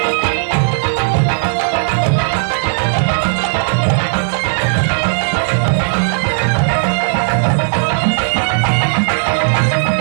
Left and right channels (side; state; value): left; silent; digital silence